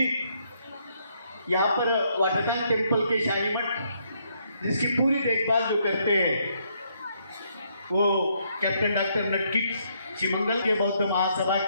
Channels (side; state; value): both; inverted; correlation -0.73